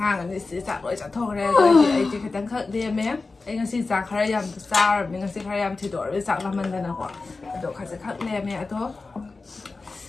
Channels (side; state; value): right; quieter; 3.8 dB